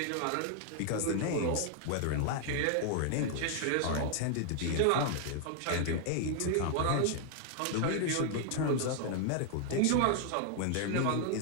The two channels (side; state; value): both; different; correlation 0.00